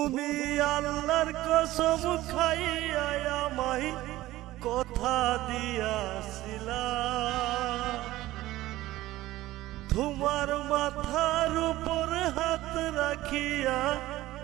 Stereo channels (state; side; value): quieter; left; 16.4 dB